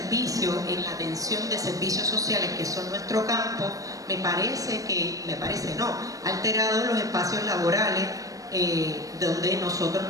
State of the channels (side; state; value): left; late; 0.16 ms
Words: en la atención de servicios sociales, que son nuestro campo, ha alterado los espacios laborales donde nosotros